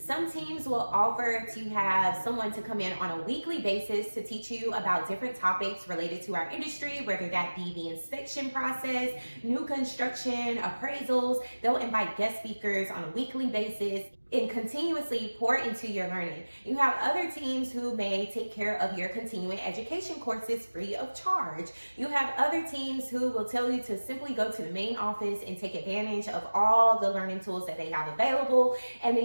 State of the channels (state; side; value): inverted; both; correlation -1.00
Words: teams will offer to have someone to come in on a weekly basis to teach you about different topics related to our industry, whether that be the inspection process, new construction, appraisals. They'll invite guest speakers on a weekly basis and continuously pour into your learning. You have other teams who may take care of your continuing education courses free of charge. You have other teams who will tell you to simply go to the main office and take advantage of all the learning tools that they have available. And